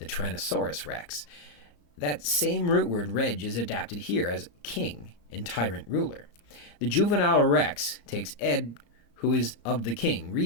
Tyrannosaurus rex. That same root word, reg, is adapted here as king and tyrant ruler. The juvenile rex takes Ed, who is of the king,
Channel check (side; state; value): right; late; 34 ms